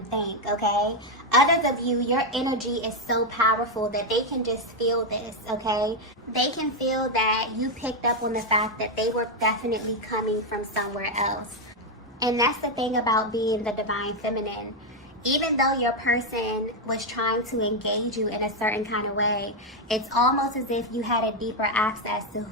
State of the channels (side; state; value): both; normal; correlation 0.04